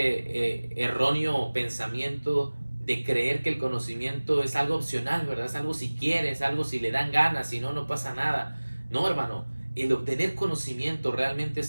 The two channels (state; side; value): inverted; both; correlation -1.00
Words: erróneo pensamiento de creer que el conocimiento es algo opcional, ¿verdad? Es algo si quiere, es algo si le dan ganas, si no, no pasa nada. No, hermano, el obtener conocimiento realmente